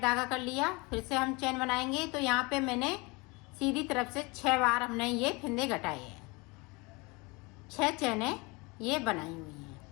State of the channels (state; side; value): quieter; right; 26.4 dB